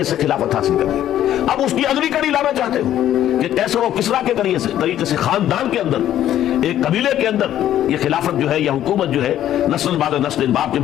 سے خلافت حاصل کر لی، اب اس کی اگلی کڑی لانا چاہتے ہو کہ قیصر و کسریٰ کے طریقے سے خاندان کے اندر، ایک قبیلے کے اندر یہ خلافت جو ہے یا حکومت جو ہے نسل بعد نسل، باپ کے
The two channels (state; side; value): quieter; right; 11.8 dB